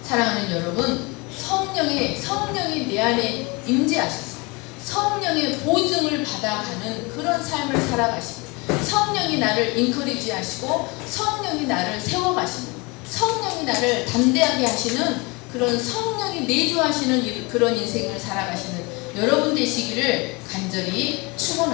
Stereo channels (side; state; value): right; quieter; 27.0 dB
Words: 사랑하는 여러분, 성령이 내 안에 임재하셔서 성령의 보증을 받아가는 그런 삶을 살아가시고, 성령이 나를 인커리지 하시고, 성령이 나를 세워가시는, 성령이 나를 담대하게 하시는 그런 성령이 내주하시는 그런 인생을 살아가시는 여러분 되시기를 간절히